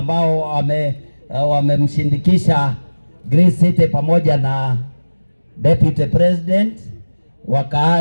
wamemshindikisha Grace City pamoja na Deputy President,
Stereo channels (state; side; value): inverted; both; correlation -1.00